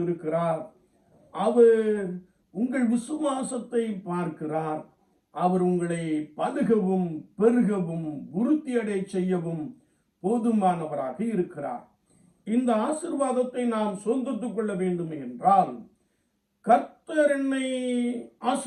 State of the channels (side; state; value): both; identical; correlation 1.00